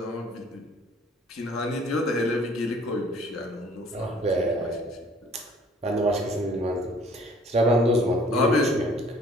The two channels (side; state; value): both; normal; correlation 0.55